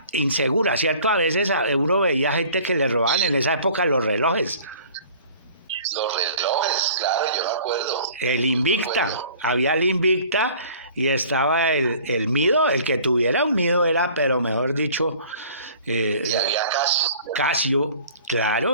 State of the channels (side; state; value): both; inverted; correlation -0.49